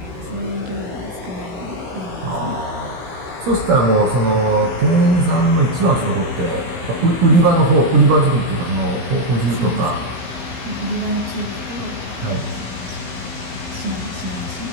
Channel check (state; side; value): late; left; 16 ms